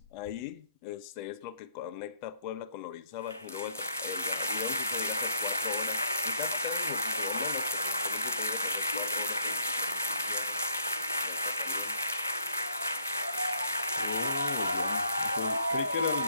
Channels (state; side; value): inverted; both; correlation -0.66